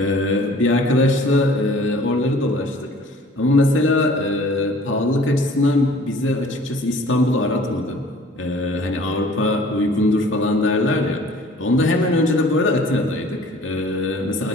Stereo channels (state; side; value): normal; both; correlation 0.51